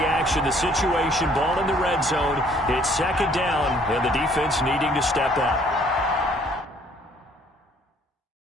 action. The situation, ball in the red zone. It's second down, and the defense needing to step up.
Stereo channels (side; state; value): both; normal; correlation 0.60